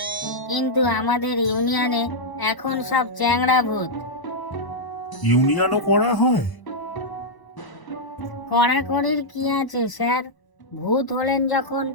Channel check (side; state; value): right; late; 1.0 ms